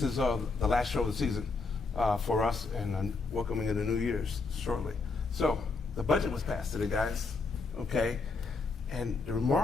is the last show of the season for us, and welcoming in the New Year's shortly. So the budget was passed today, guys, okay? And the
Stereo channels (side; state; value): right; quieter; 3.9 dB